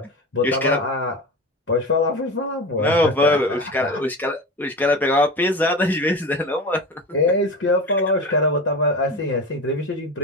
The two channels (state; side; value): normal; both; correlation 0.27